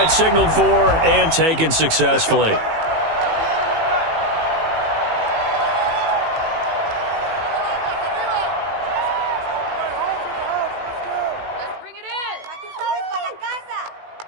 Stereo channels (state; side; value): late; left; 18 ms